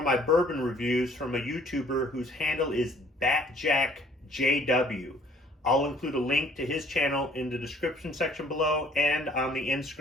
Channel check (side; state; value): both; normal; correlation 0.59